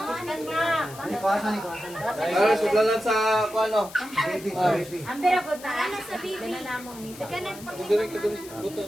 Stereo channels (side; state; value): left; noise; hiss, 17 dB below the sound